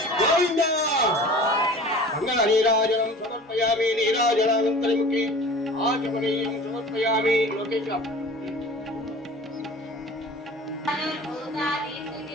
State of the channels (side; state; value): both; normal; correlation 0.41